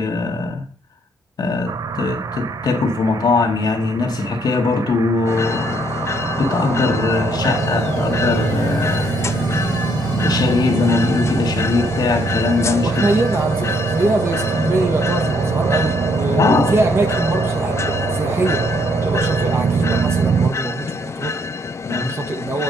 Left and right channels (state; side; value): normal; both; correlation 0.69